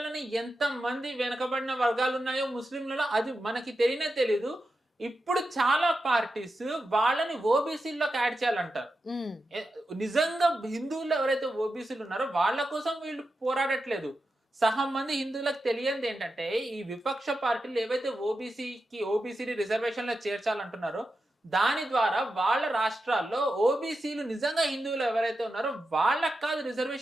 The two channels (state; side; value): normal; both; correlation 0.89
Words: ఎంత మంది వెనకబడిన వర్గాలు ఉన్నాయో ముస్లింలలో అది మనకి తెలియనే తెలీదు. ఇప్పుడు చాలా పార్టీస్ వాళ్ళని ఓబీసీలోకి యాడ్ చేయాలంటారు. నిజంగా హిందువులు ఎవరైతే ఓబీసీలు ఉన్నారో వాళ్ళ కోసం వీళ్ళు పోరాడట్లేదు. సహం మంది హిందువులకు తెలియంది ఏంటంటే ఈ విపక్ష పార్టీలు ఏవైతే ఓబీసీని రిజర్వేషన్ లో చేర్చాలంటున్నారో దాని ద్వారా వాళ్ళ రాష్ట్రాల్లో ఓబీసీలు నిజంగా హిందువులు ఎవరైతే ఉన్నారో వాళ్ళకి కాదు